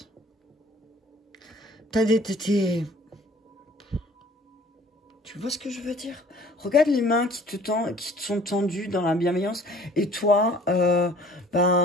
Tu vois ce que je veux dire? Regarde les mains qui te sont tendues dans la bienveillance, et toi,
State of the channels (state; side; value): normal; both; correlation 0.53